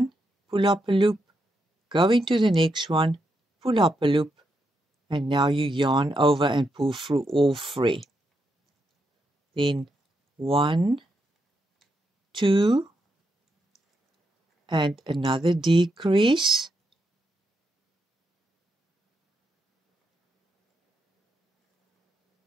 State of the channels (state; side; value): normal; both; correlation 0.81